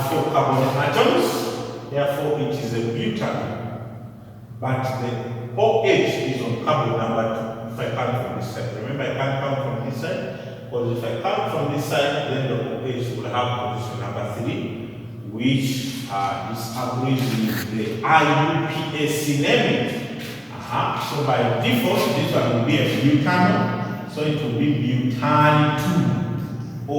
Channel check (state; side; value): identical; both; correlation 1.00